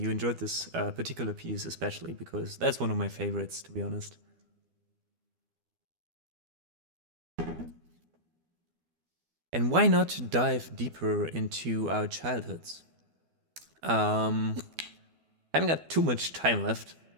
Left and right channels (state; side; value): late; left; 12 ms